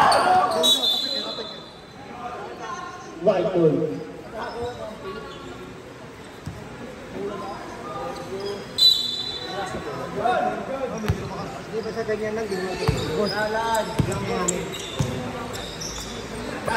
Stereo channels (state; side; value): identical; both; correlation 1.00